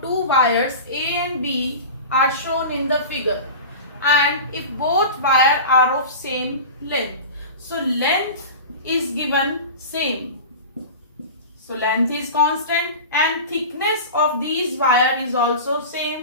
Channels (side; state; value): both; inverted; correlation -0.32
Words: wires A and B are shown in the figure, and if both wires are of same length. So length is given same. So length is constant and thickness of these wire is also